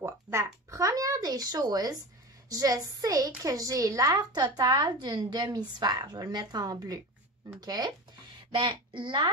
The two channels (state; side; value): normal; both; correlation 0.29